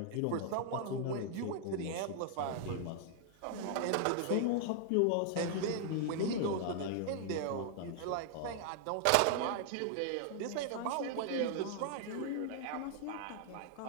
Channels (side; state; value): both; different; correlation 0.00